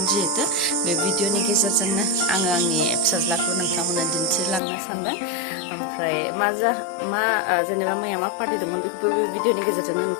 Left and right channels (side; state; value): right; drops out; at 4.6 s